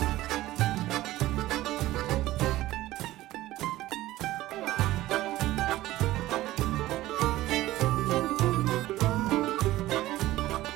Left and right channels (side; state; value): left; quieter; 16.2 dB